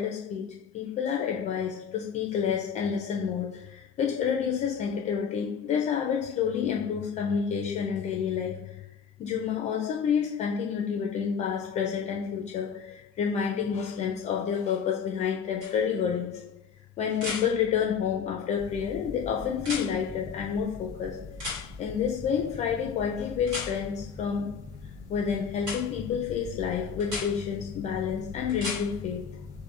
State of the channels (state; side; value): quieter; right; 6.9 dB